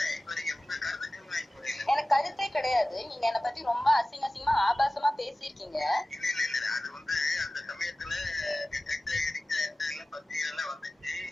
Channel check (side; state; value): both; normal; correlation 0.96